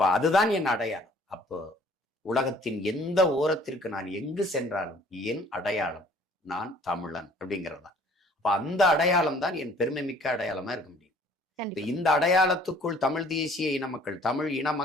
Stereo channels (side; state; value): both; normal; correlation 0.55